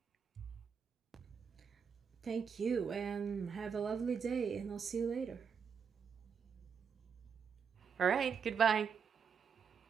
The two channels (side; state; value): left; quieter; 6.5 dB